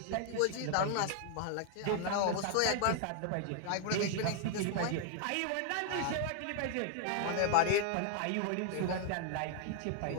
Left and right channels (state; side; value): different; both; correlation 0.00